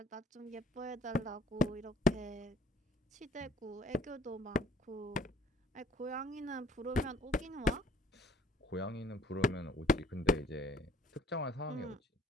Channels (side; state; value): both; normal; correlation 0.58